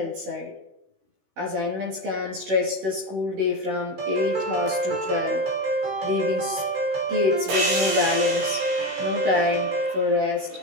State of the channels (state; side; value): late; left; 16 ms